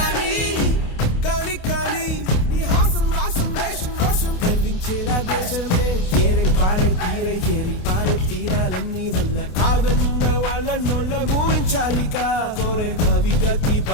కాని కాని నీ హాసం రాసం వేషం రోషం గర్వించేలా దేశమే ఏరై పారై తీరై ఏరి పారై తీరాలన్నీ వల్ల కాదన్న వాళ్ళ నోళ్ళ ఊహించాలిక కోరే భవిగతి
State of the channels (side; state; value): right; late; 28 ms